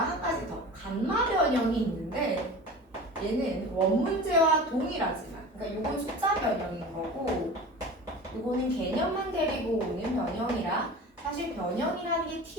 가지 더 감마 변형이 있는데 얘는 원문제와 동일하지만 그러니까 요건 숫자 변형인 거고 요거는 개념만 데리고 오는 변형이라 사실 변형이라는 게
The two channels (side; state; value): both; normal; correlation 0.36